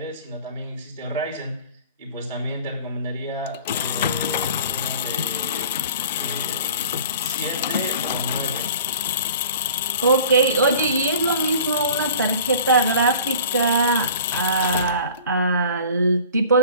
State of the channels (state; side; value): inverted; both; correlation -0.45